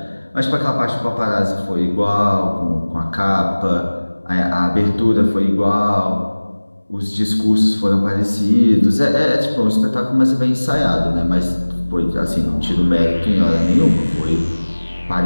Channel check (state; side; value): inverted; both; correlation -1.00